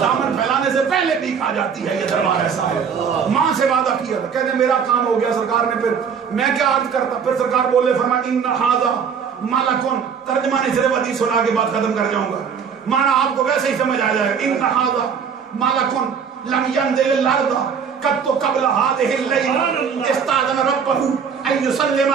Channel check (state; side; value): quieter; left; 6.7 dB